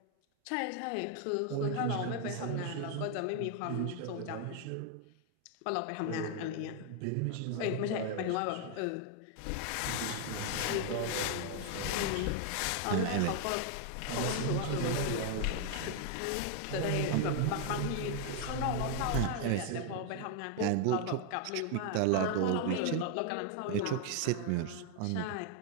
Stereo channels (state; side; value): different; both; correlation 0.00